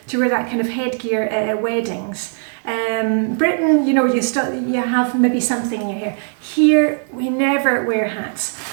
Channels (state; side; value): silent; left; 67 dB below the other